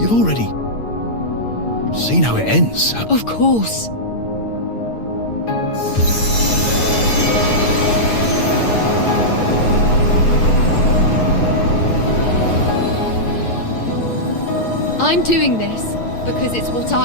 already seen how it ends. Of course. I'm doing this because it's what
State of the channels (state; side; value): late; right; 8.9 ms